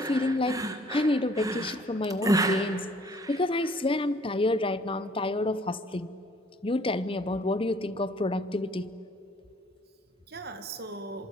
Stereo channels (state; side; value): normal; both; correlation 0.58